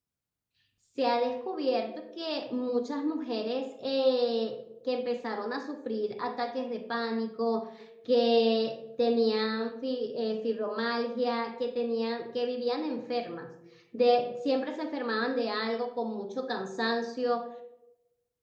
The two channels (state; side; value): identical; both; correlation 1.00